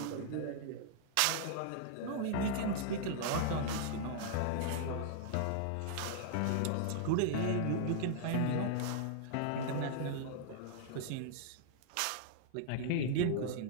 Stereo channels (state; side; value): different; both; correlation -0.01